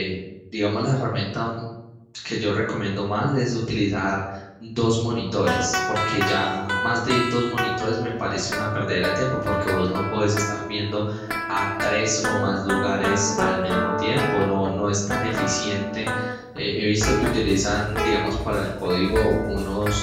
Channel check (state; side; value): identical; both; correlation 1.00